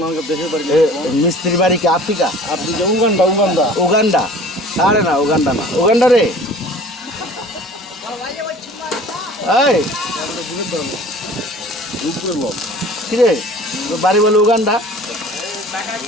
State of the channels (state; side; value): normal; both; correlation 0.46